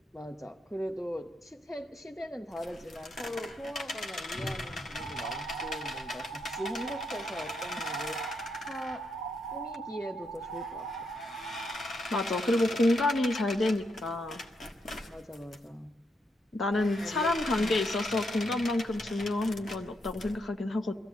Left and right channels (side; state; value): both; normal; correlation 0.79